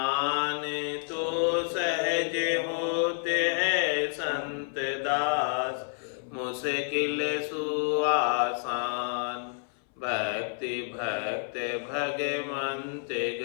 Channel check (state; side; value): silent; right; 58 dB below the other